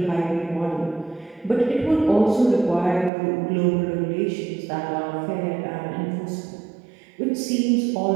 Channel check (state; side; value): drops out; left; at 3.1 s